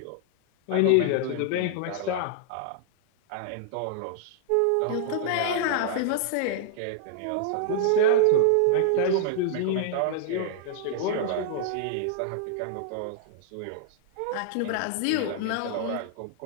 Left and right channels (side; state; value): both; different; correlation -0.01